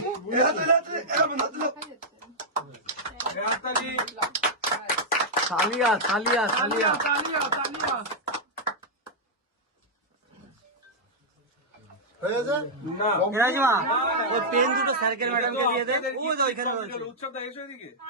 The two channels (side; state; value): both; normal; correlation -0.06